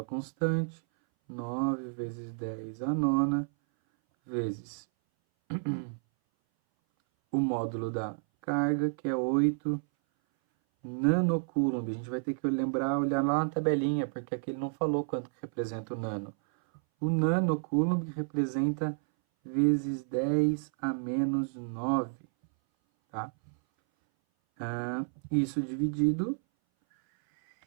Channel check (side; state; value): left; silent; 57 dB below the other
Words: constante, 9 vezes 10 a nona, vezes o módulo da carga, que é 8 nanocoulomb. A gente vai ter que lembrar, olhar lá na tabelinha, porque aqui ele não falou quanto que representa o nano. O nanocoulomb representa vezes 10 a menos 9, tá? Isso dividido